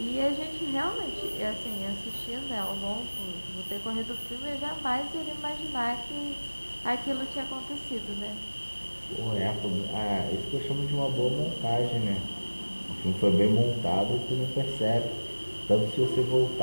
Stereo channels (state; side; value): inverted; both; correlation -1.00